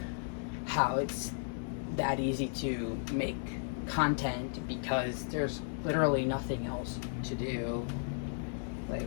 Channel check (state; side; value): silent; right; digital silence